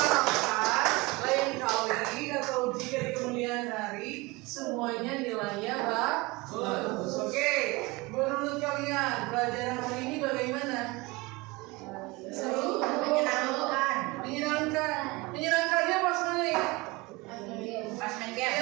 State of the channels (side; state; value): left; quieter; 23.7 dB